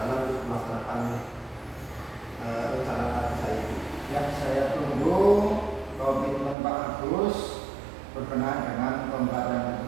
untuk melaksanakan rencana saya itu. Yang saya tunggu komitmen Pak Agus berkenaan dengan pembelajaran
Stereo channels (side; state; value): left; drops out; at 6.6 s